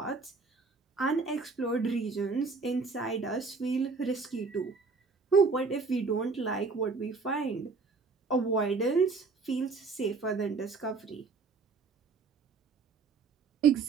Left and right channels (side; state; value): left; quieter; 4.4 dB